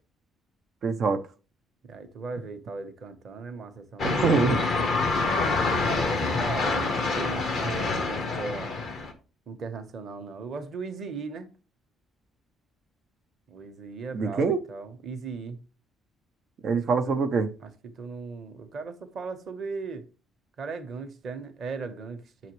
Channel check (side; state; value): both; normal; correlation 0.64